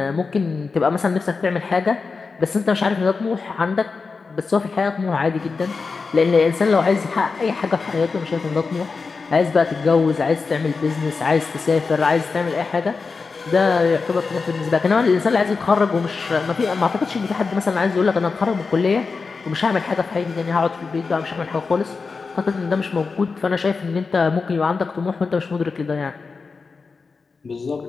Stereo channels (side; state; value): right; quieter; 4.6 dB